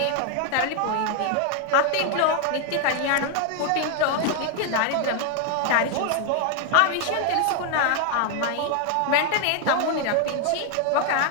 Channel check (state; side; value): different; both; correlation 0.00